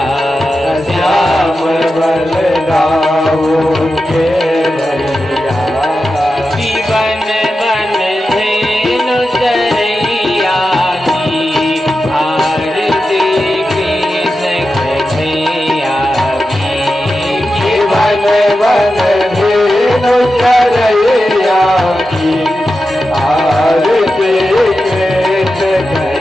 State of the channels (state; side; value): normal; both; correlation 0.91